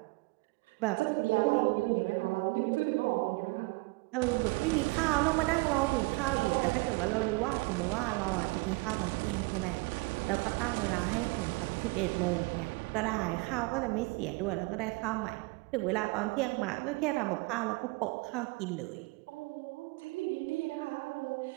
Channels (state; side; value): quieter; left; 26.3 dB